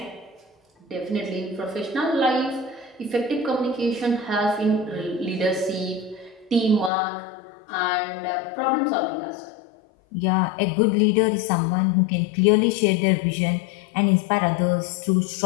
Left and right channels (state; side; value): drops out; right; at 6.9 s